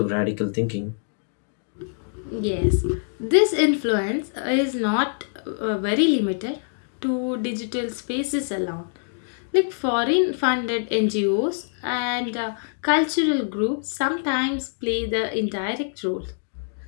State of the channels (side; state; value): right; silent; digital silence